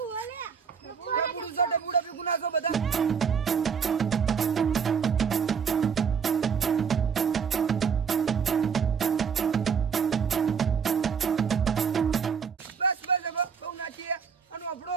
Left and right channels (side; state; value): left; quieter; 6.5 dB